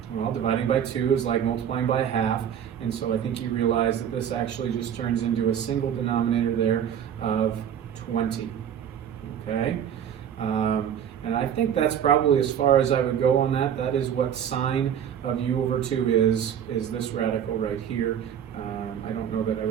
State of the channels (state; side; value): quieter; left; 9.1 dB